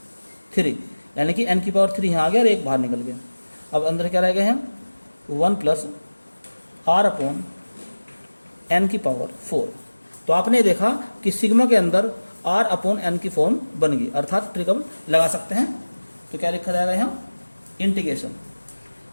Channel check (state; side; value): inverted; both; correlation -1.00